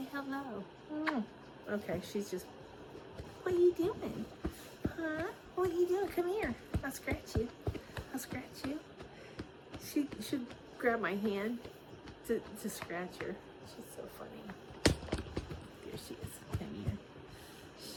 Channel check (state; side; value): identical; both; correlation 1.00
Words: hello. Okay, she's just... What are you doing? Huh? What are you doing? Come here. I'll scratch you. I'll scratch you. She should grab my hand to scratch her. She's so funny. There she is. Come here.